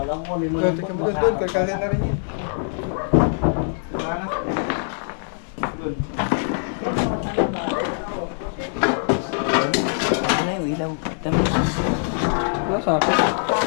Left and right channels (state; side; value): silent; right; digital silence